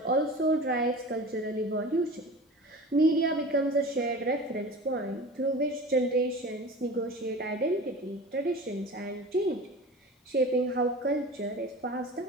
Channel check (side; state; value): both; normal; correlation 0.36